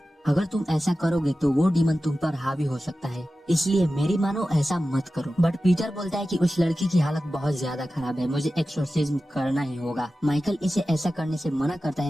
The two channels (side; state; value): both; normal; correlation 0.94